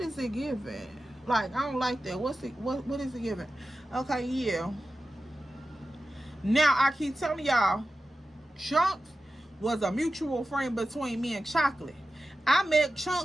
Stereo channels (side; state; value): both; normal; correlation 0.93